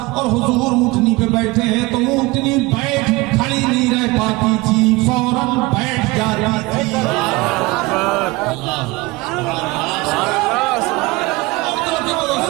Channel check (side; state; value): left; quieter; 22.4 dB